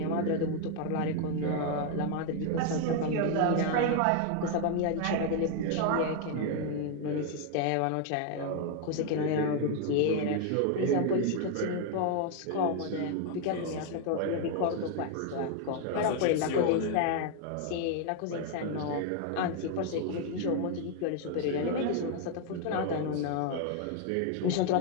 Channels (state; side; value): different; both; correlation 0.00